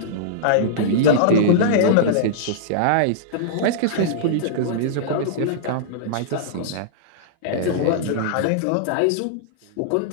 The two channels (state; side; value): different; both; correlation -0.02